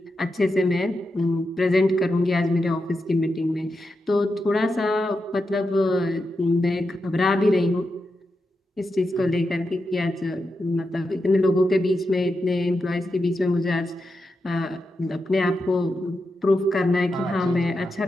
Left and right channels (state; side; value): normal; both; correlation 0.87